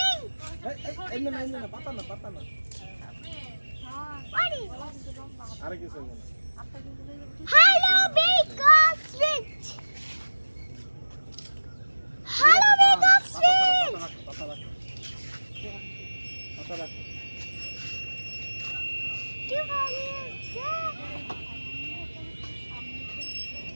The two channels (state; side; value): inverted; both; correlation -1.00